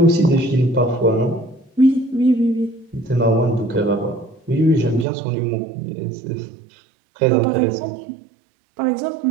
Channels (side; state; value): left; drops out; at 5.1 s